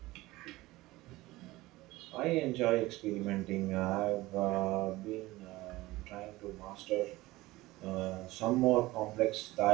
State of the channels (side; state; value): left; quieter; 19.0 dB